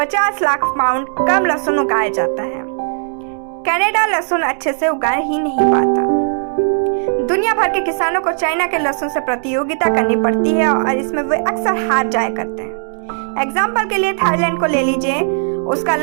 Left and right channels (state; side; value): silent; left; digital silence